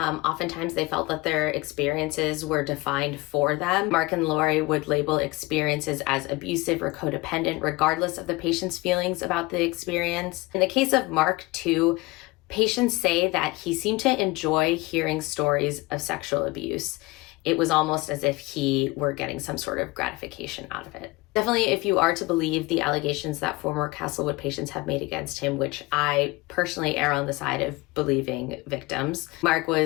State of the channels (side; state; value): right; quieter; 22.2 dB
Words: they felt that their experiences were defined for them. Mark and Lori would label experiences as abusive or codependent, regardless of the patient's feelings about the experience. In the case of Mark, too, patients say that he seemed to enjoy hearing stories of sexual abuse. It was almost as if he were getting some sort of gratification out of it. Definitely, if you are to believe the allegations that former Castlewood patients have made against him, which I personally err on the side of believing victims, Mark